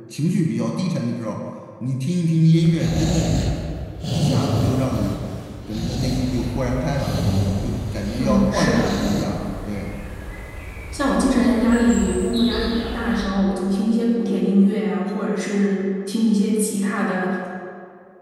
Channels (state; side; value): identical; both; correlation 1.00